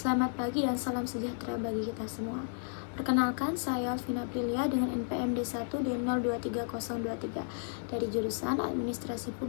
pagi dan salam sejahtera bagi kita semua. Perkenalkan, saya Alvina Aprilia dengan NPM D1D023023 dari jurusan Administrasi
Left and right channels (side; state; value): right; silent; digital silence